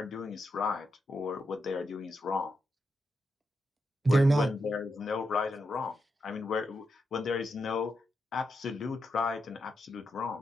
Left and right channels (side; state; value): both; normal; correlation 0.85